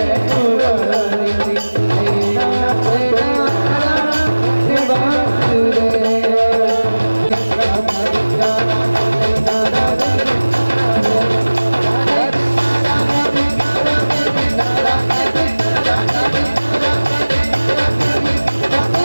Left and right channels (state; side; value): inverted; both; correlation -1.00